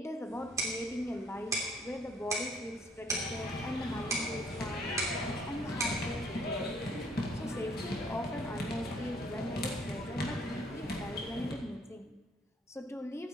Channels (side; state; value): both; normal; correlation 0.63